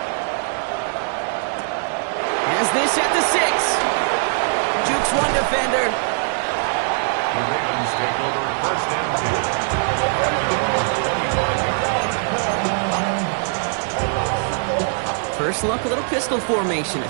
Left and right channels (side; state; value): left; silent; digital silence